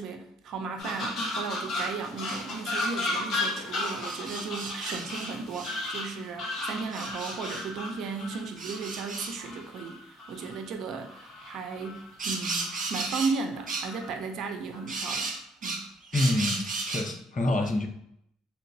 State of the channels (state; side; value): normal; both; correlation 0.61